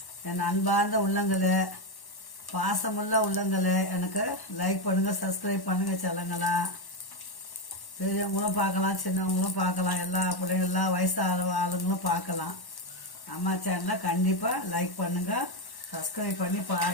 என் அன்பார்ந்த உள்ளங்களை, பாசமுள்ள உள்ளங்களை எனக்கு லைக் பண்ணுங்கள், சப்ஸ்கிரைப் பண்ணுங்கள் செல்லங்களா. பெரியவங்களும் பார்க்கலாம், சின்னவங்களும் பார்க்கலாம், எல்லா பிள்ளைங்க எல்லா வயசு ஆளுங்களும் பார்க்கலாம். அம்மா சேனலை கண்டிப்பாக லைக் பண்ணுங்கள், சப்ஸ்கிரைப் பண்ணி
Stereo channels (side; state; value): right; late; 1.1 ms